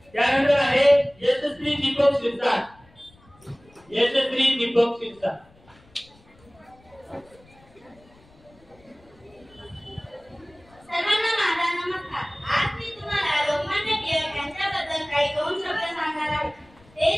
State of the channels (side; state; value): left; noise; rumble, 28 dB below the sound